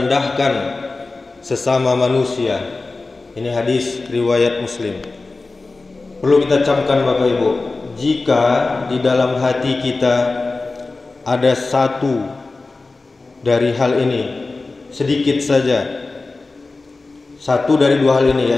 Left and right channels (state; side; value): quieter; right; 3.6 dB